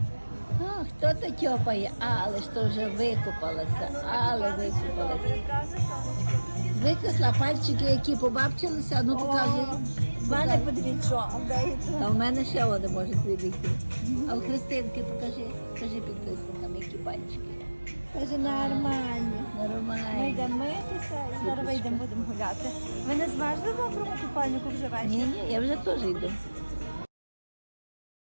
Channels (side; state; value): both; inverted; correlation -1.00